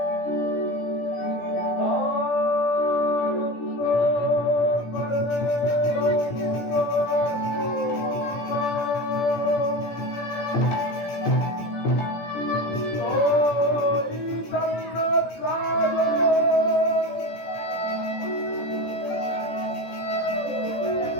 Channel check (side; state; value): right; late; 17 ms